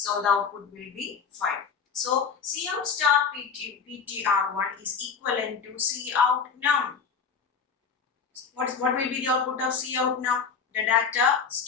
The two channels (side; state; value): right; quieter; 5.9 dB